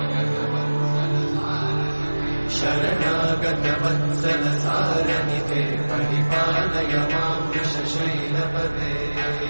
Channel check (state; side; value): inverted; both; correlation -1.00